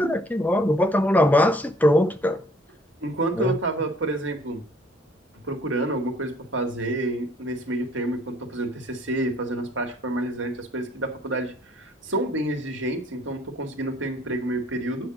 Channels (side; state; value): both; normal; correlation 0.59